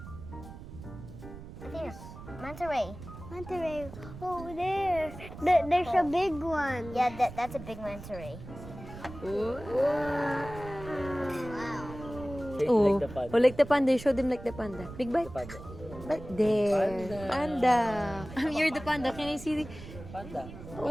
There's manta ray. Manta ray. Oh, there. There's a big one. Yeah, that's a big manta ray. Ooh. Wow. Oh, Like the panda. oh, like the panda. Show them like the panda. Big bite. Panda. Right there. Panda. You're the panda. Can I see the... Panda.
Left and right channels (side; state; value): right; noise; rumble, 14 dB below the sound